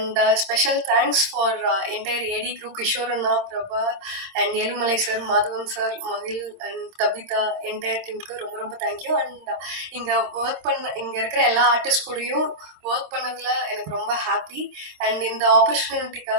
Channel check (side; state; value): left; late; 26 ms